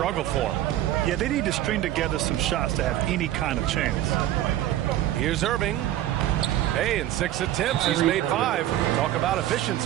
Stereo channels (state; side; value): quieter; left; 13.3 dB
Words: for him. Yeah, they need to string together some shots to have any kind of chance. Here's Irving. Hey, in 6 attempts, he's made 5. Talk about